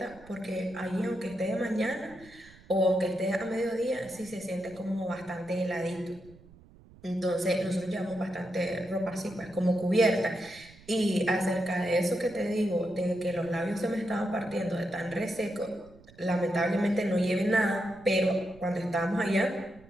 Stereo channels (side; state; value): right; noise; rumble, 23 dB below the sound